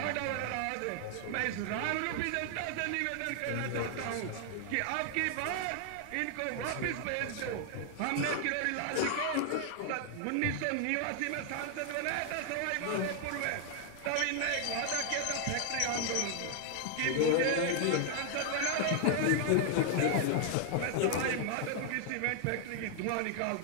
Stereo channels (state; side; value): different; both; correlation 0.00